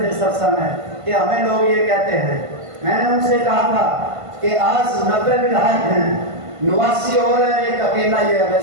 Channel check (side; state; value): left; late; 1.5 ms